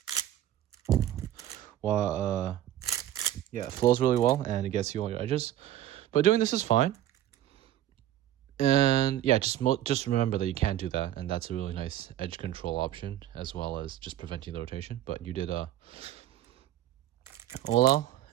yeah, it flows really well, and it gets you all your edges. But doing this is fine. And yeah, just remember that you can do that, and that's a really nice edge control option, as well as just preventing the rotation. But you did OLL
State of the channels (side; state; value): left; quieter; 12.7 dB